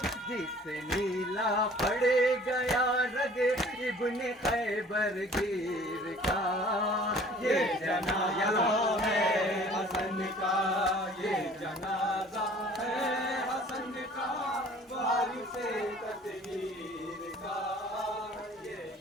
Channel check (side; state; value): both; normal; correlation 0.51